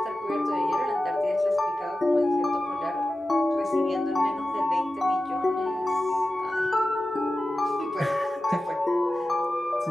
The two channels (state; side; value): normal; both; correlation 0.94